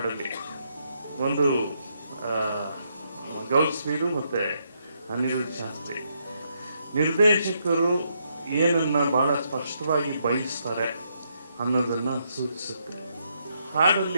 ಒಂದು ಗೌಸ್ ಮೀರು ಮತ್ತು ಅನಿರುದ್ಧ ಶಾಸ್ತ್ರಿ. ನಿರ್ದೇಶಕರು ಏನನ್ನ ಭಾಳ ಸ್ಪಷ್ಟವಾಗಿ ಬಯಸ್ತಾರೆ ಅನ್ನೋದನ್ನು ಸೂಚಿಸುತ್ತೆ.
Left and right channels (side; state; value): both; inverted; correlation -0.77